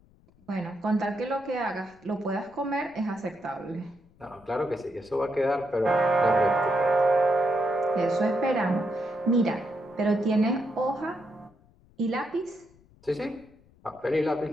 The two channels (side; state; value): left; noise; rumble, 29 dB below the sound